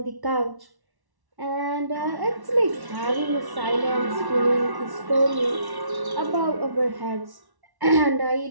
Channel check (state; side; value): late; left; 1.1 ms